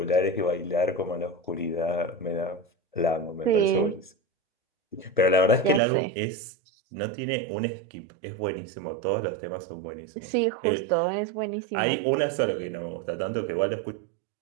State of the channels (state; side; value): drops out; left; at 5.8 s